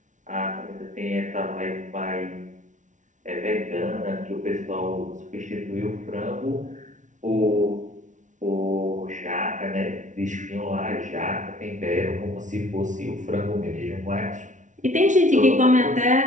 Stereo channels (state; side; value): late; left; 0.37 ms